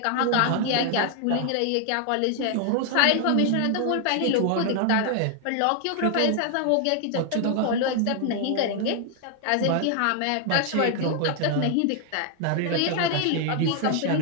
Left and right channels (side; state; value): both; different; correlation 0.00